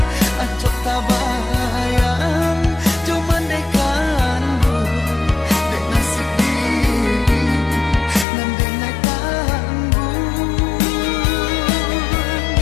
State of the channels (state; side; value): drops out; right; at 8.2 s